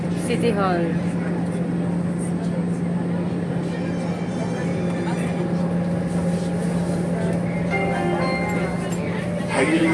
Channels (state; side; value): identical; both; correlation 1.00